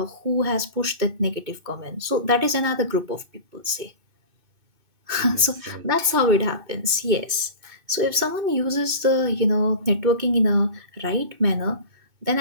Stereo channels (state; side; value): late; left; 2.6 ms